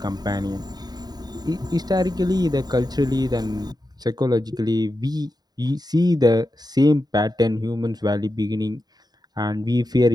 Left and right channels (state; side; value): late; left; 0.20 ms